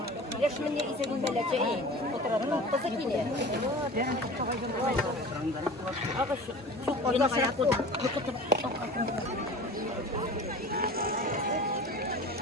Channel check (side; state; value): both; normal; correlation 0.38